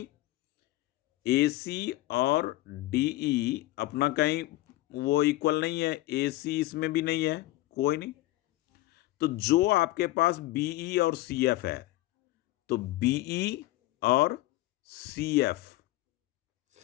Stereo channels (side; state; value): right; quieter; 17.4 dB